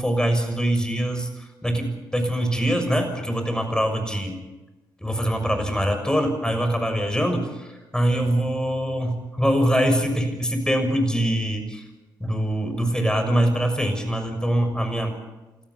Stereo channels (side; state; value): both; normal; correlation 0.88